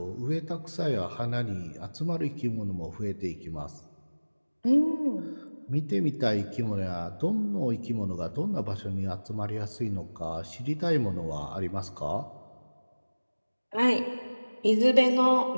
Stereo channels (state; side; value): inverted; both; correlation -1.00